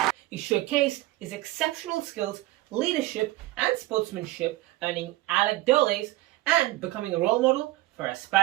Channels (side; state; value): left; quieter; 17.8 dB